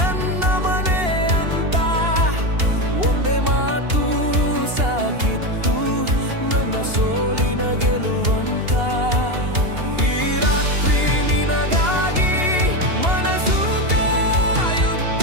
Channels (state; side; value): late; left; 2.8 ms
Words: ಮನೆ ಅಂತ, ಒಂದೇ ಮಾತು ಸಾಕಿತ್ತು ನನ್ನ ಸೋಲಿನ ಗೆಲುವಂತ. ಈ ರಾತ್ರಿ ನಿನಗಾಗಿ ಮನಸ್ಸು